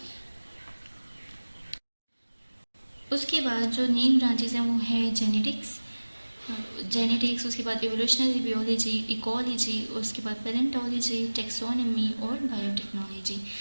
उसके बाद जो नेम ब्रांचेस हैं वो है जेनेटिक्स, उसके बाद एवोल्यूशनरी बियोलॉजी, इकोलॉजी, उसके बाद पैलेंटोलॉजी, टेक्सोनॉमी और बायोटेक्नोलॉजी।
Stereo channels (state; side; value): inverted; both; correlation -1.00